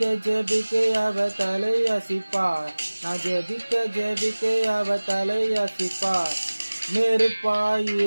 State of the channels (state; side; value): inverted; both; correlation -1.00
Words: ஜெபிக்க அவ தலை அசிப்பார். நான் ஜெபிக்க ஜெபிக்க அவ தலை அசிப்பார். நெருப்பாய்